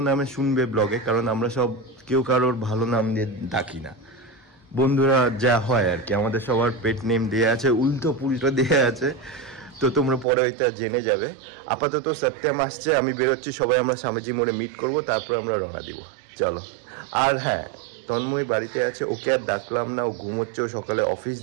নামে শুনবে ব্লগে, কারণ আমরা সব কেউ কারোর ভালো নাম দিয়ে ডাকি না। বন্ধুরা যা হয় আর কি, আমাদের সবার পেট নেম দেওয়া আছে, উল্টো পুল্টো দেওয়া আছে, তো তোমরা পরে ওইটা জেনে যাবে। আপাতত সত্যম আসছে, আমি বেরোচ্ছি, সবাই আমরা স্বামীজি মোড়ে মিট করব, তারপর আমরা রওনা দিব। চলো। আর হ্যাঁ, তন্ময় বাড়িতে আছে, ওকে আর ডাকলাম না, ও ঘুমোচ্ছে, ও সকালে অফিস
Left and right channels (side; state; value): left; drops out; at 10.2 s